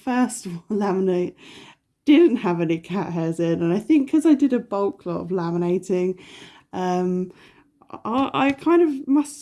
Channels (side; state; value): both; identical; correlation 1.00